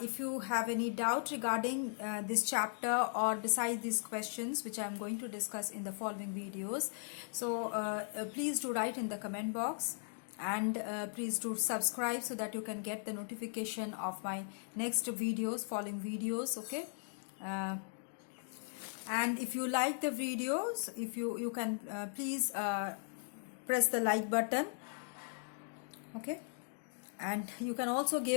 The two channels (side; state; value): right; silent; digital silence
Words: you have any doubt regarding this chapter or besides these questions which I am going to discuss in the following videos, so please do write in the comment box. And please do subscribe so that you can get the notification of my next videos, following videos. Okay, and if you like the videos, if you can please press the like button. Okay, and you can also